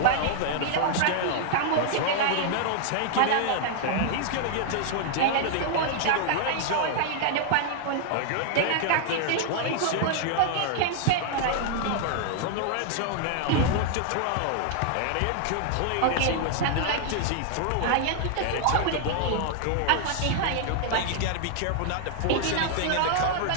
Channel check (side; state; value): both; different; correlation 0.00